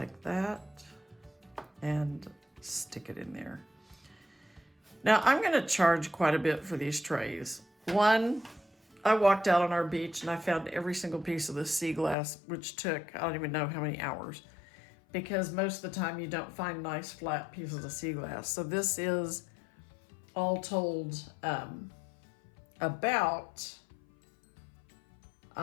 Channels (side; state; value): right; drops out; at 12.2 s